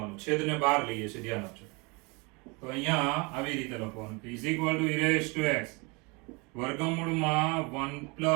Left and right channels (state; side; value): quieter; left; 28.8 dB